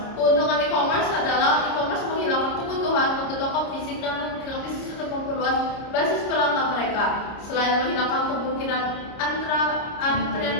Keuntungan e-commerce adalah e-commerce menghilangkan kebutuhan untuk toko fisik dan memungkinkan bisnis untuk memperluas basis pelanggan mereka. Selain menghilangkan kemungkinan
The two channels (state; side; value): late; right; 29 ms